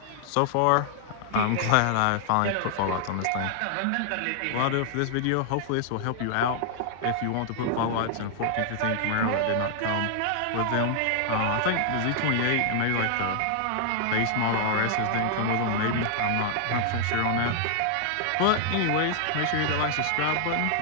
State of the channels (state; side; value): different; both; correlation -0.01